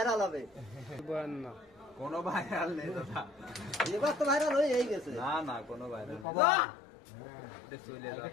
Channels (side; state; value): right; drops out; at 6.2 s